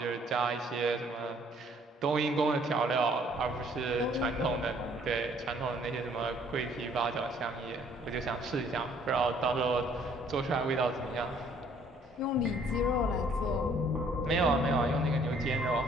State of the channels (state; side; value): normal; both; correlation 0.61